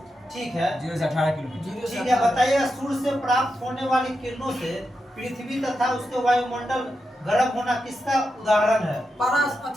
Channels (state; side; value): normal; both; correlation 0.87